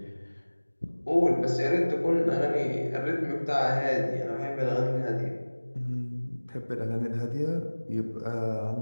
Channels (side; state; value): both; inverted; correlation -1.00